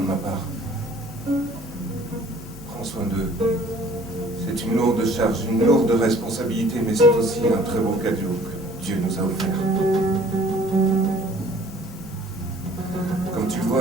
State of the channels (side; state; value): both; normal; correlation 0.54